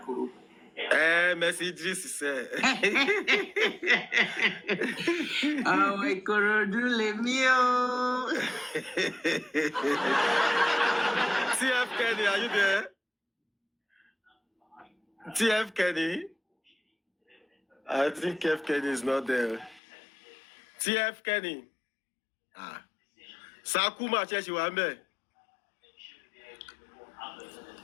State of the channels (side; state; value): right; drops out; at 19.8 s